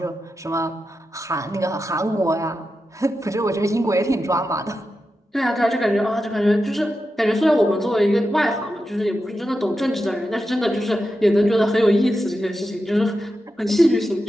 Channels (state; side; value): normal; both; correlation 0.89